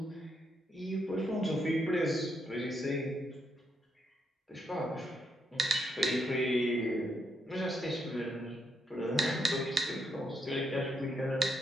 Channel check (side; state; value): both; normal; correlation 0.78